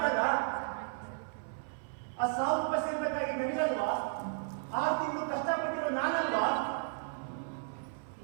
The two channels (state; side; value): silent; left; 55 dB below the other